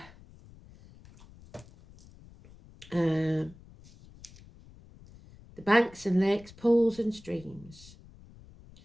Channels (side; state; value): left; noise; rumble, 22 dB below the sound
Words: The banks and lakes, pools and streams.